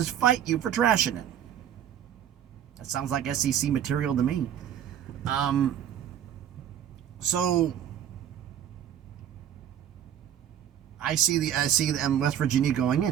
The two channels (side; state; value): left; quieter; 10.0 dB